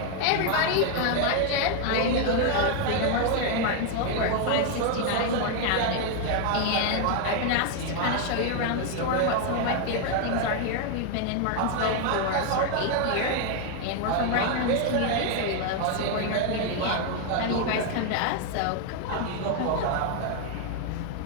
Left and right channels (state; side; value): different; both; correlation 0.00